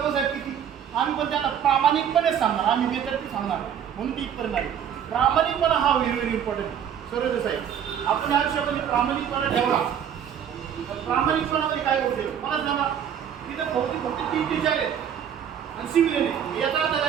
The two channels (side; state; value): left; quieter; 8.9 dB